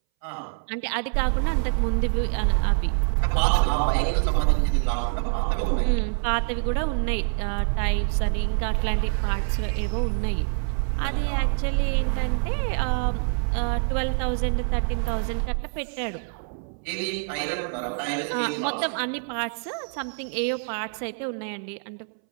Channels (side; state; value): left; silent; 61 dB below the other